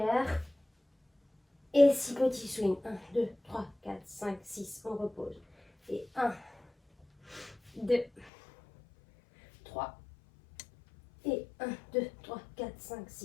Et 6 petits swings. 1, 2, 3, 4, 5, 6. On repose. Et 1, 2, 3. Et 1, 2, 3, 4, 5,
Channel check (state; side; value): drops out; right; at 8.3 s